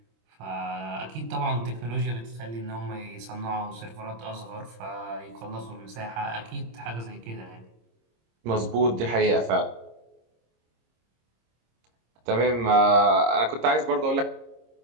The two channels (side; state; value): left; late; 26 ms